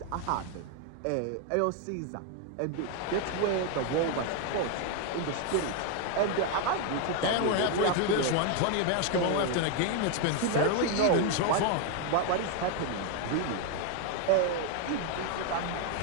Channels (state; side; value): different; both; correlation 0.01